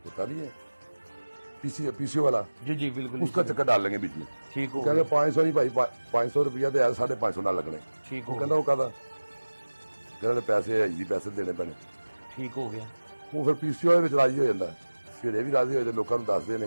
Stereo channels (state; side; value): inverted; both; correlation -1.00